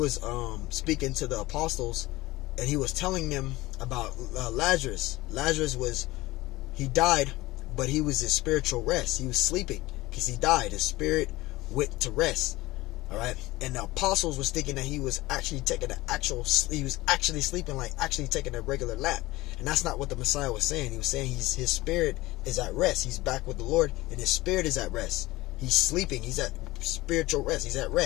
speaking to the apostles, and he was telling them about Lazarus. Lazarus he died, but he was in spiritual rest. He was sleeping because he died. His spirit went to rest. All right, and the apostles was thinking that he was actually taking he was actually sleeping, like actually taking a regular nap, and that's not what the Messiah was saying. He was saying his spirit is at rest. He's back with the Lord, and his spirit is at rest. He's sleeping. He's at spiritual rest. He's at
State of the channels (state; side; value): quieter; right; 19.3 dB